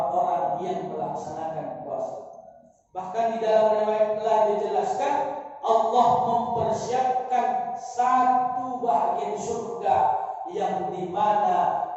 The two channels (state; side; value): identical; both; correlation 1.00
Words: yang melaksanakan puasa. Bahkan di dalam riwayat telah dijelaskan, Allah mempersiapkan satu bagian surga yang dimana